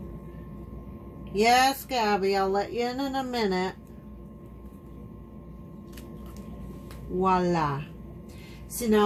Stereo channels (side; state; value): both; identical; correlation 1.00